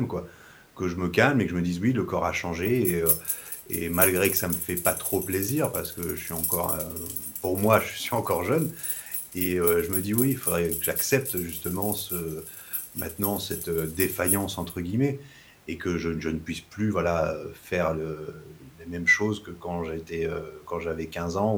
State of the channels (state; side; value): identical; both; correlation 1.00